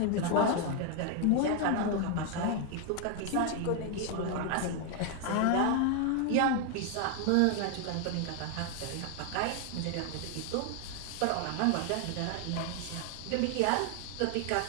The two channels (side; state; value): both; different; correlation 0.00